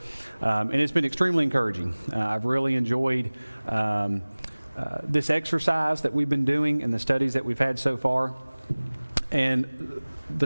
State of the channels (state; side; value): inverted; both; correlation -1.00